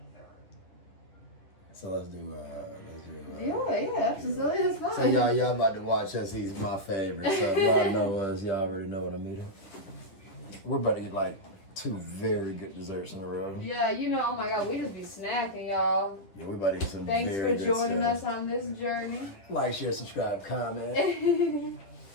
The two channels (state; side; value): late; right; 10 ms